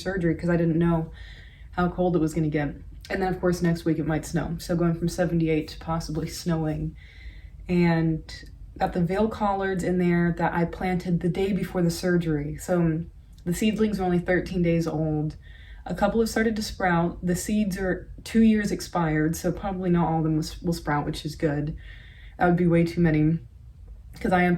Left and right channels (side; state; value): both; identical; correlation 1.00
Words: because I didn't know how cold it was going to get. And then of course next week it might snow, so going from 78 to possibly snowing. And got the veil collards in there that I planted the day before the surgery. So the seedlings are only 13 days old. A couple have started to sprout. The seeds are 2 years expired, so probably not all of them will sprout, which is good. That would be way too many because I